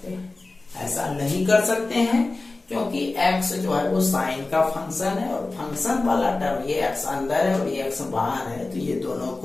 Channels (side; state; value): right; quieter; 3.3 dB